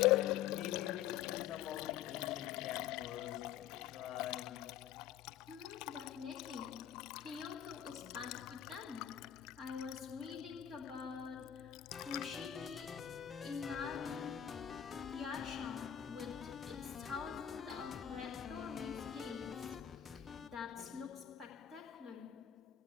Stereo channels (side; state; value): right; quieter; 10.5 dB